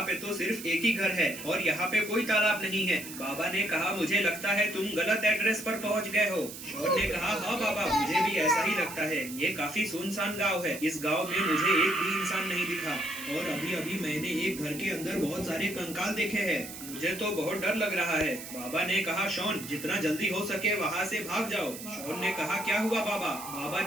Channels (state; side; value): noise; right; hiss, 11 dB below the sound